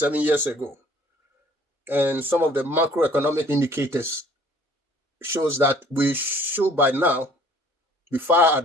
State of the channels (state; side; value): normal; both; correlation 0.56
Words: years ago. And some of the macroeconomic indicators shows that we should by now be far